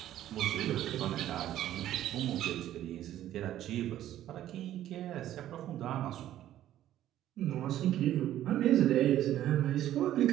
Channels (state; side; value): quieter; left; 12.6 dB